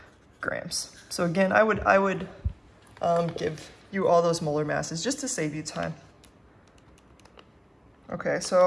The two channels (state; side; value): identical; both; correlation 1.00